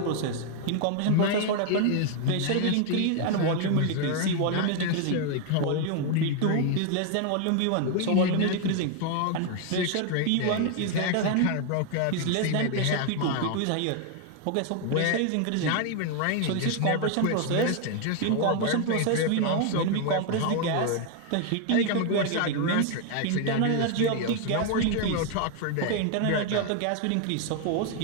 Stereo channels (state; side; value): different; both; correlation 0.01